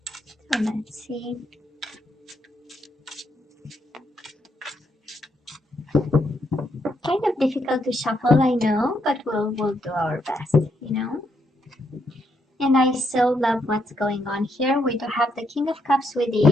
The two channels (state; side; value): normal; both; correlation 0.77